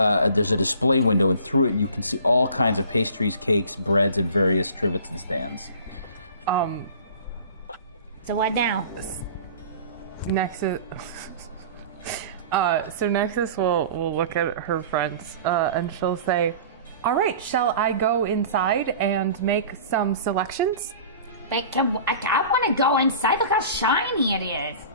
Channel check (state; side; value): inverted; both; correlation -0.43